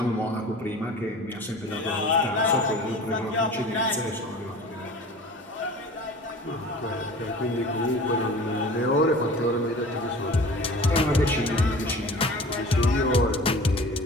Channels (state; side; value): normal; both; correlation 0.41